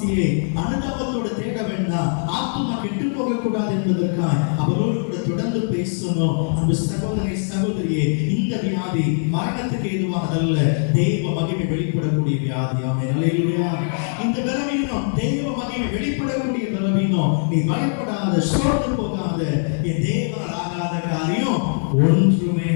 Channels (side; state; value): right; silent; 60 dB below the other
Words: அனுதாபத்தோடு தேட வேண்டாம், ஆத்துமா கெட்டு போக கூடாது என்பதற்காக அவரோடு கூட தொடர்ந்து பேசணும். அன்பு சகோதரி சகோதரியே, இந்த வியாதி மரணத்துக்கு ஏதுவானதல்ல, தெய்வ மகிமை வெளிப்படக்கூடிய வியாதி. ஆமென். ஹல்லேலூயா. இந்த பலவீனம் தெய்வ மகிமை வெளிப்படக்கூடிய பலவீனம். நீ பயப்படாத, சோர்ந்து போகாத, என் தேவனால் ஆகாத காரியம் ஒன்றுமே